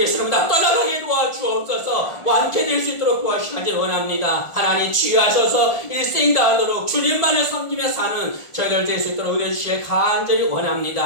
세력 다 떠나가게 도와주옵소서. 완쾌될 수 있도록 도와주시기 원합니다. 하나님 치유하셔서 일생 다하도록 주님만을 섬기며 사는 저희들 될 수 있도록 은혜 주시길 간절히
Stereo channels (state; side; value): late; right; 1.4 ms